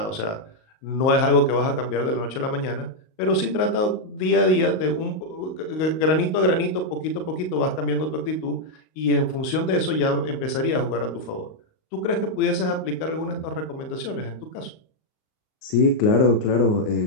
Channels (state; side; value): late; right; 38 ms